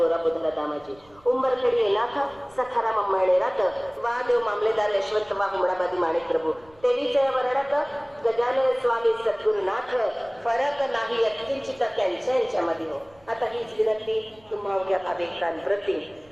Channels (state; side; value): noise; right; rumble, 29 dB below the sound